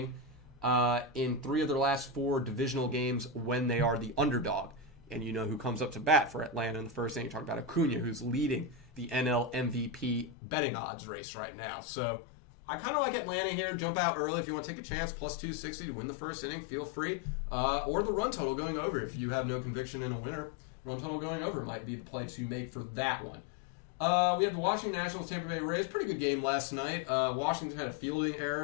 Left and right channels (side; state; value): right; drops out; at 10.4 s